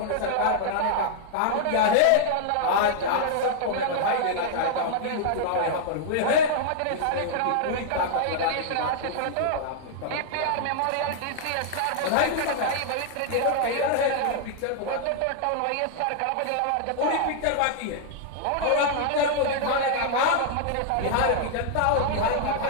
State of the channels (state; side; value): different; both; correlation -0.01